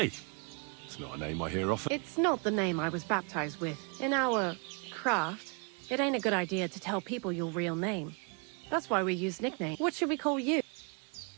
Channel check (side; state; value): left; quieter; 35.5 dB